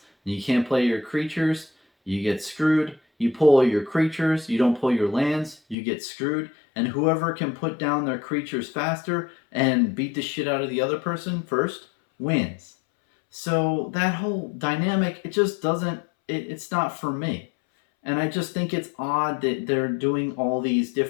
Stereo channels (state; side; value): drops out; right; at 5.8 s